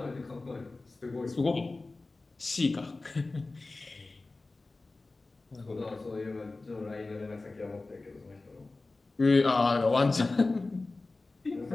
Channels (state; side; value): quieter; right; 3.4 dB